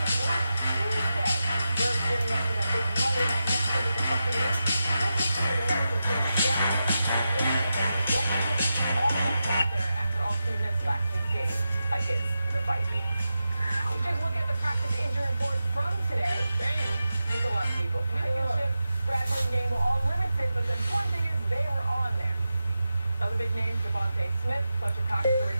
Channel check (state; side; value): inverted; both; correlation -0.90